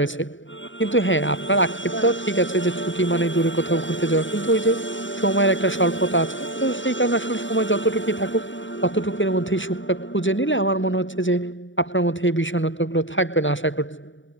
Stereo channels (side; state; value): right; late; 0.55 ms